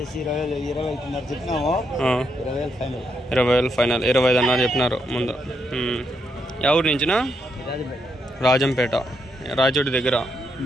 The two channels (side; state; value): both; normal; correlation 0.79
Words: 20 చెప్పినాము 20,000 ఫైనల్ 25 అన్నారు చెప్పినారు ముందు ఎవరి నుంచినా రాజంపేట రాజోటి దగ్గర